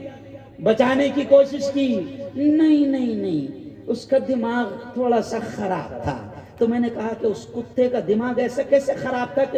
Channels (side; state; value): both; identical; correlation 1.00